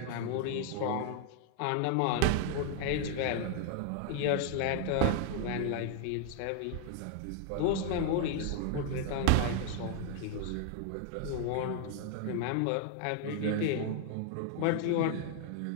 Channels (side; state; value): both; different; correlation 0.00